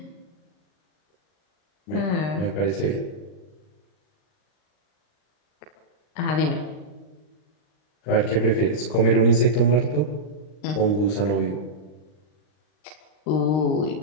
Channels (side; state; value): right; late; 39 ms